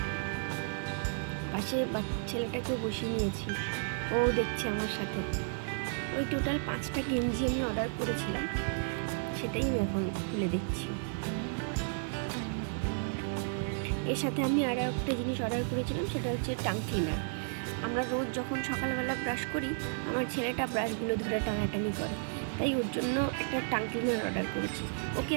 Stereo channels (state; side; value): silent; left; digital silence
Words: পাশে ছেলেটাকেও বসিয়ে নিয়েছি, ও দেখছে আমার সাথে। ওই টোটাল 5টা গেঞ্জি আমি অর্ডার করেছিলাম, সেটাই আমি এখন খুলে দেখছি। এর সাথে আমি আরও একটা জিনিস অর্ডার করেছিলাম, সেটা হচ্ছে টাং ক্লিনার। আমরা রোজ যখন সকালবেলা ব্রাশ করি, আমার ছেলেটা ব্রাশগুলো ধরে টানাটানি করে, তাই ওর জন্য একটা টাং ক্লিনার অর্ডার করেছি। ওকে